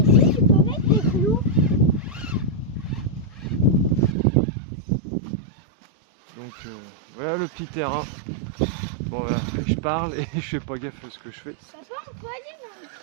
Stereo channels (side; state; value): left; drops out; at 4.2 s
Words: tu peux mettre des clous. Donc voilà le petit terrain. Bon voilà, je parle et je fais pas gaffe à ce que je fais. Ça va, on peut aller dans le